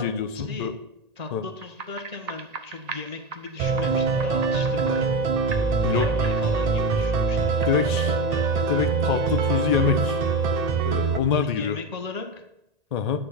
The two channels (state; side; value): late; left; 1.8 ms